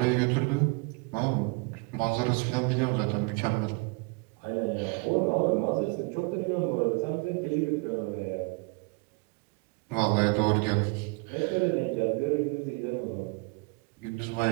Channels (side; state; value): left; quieter; 30.1 dB